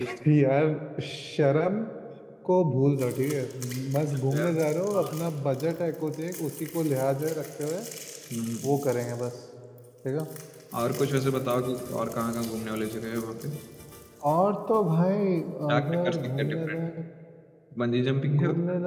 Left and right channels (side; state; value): both; identical; correlation 1.00